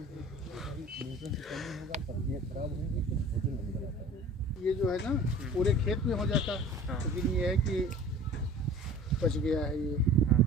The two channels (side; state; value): both; normal; correlation 0.44